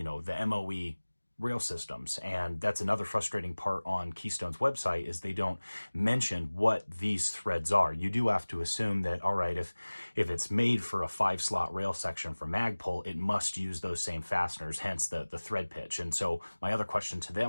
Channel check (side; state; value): both; inverted; correlation -1.00